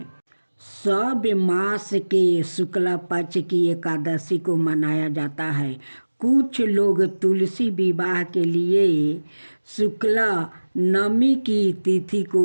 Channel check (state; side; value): inverted; both; correlation -1.00